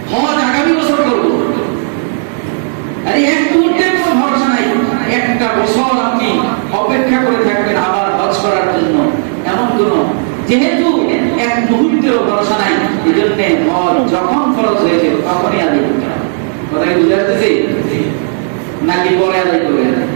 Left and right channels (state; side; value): silent; left; 66 dB below the other